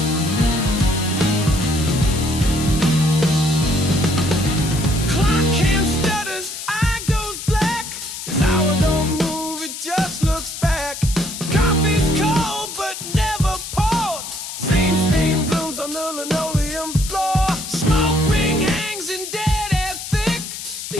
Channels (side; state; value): left; noise; hiss, 8 dB below the sound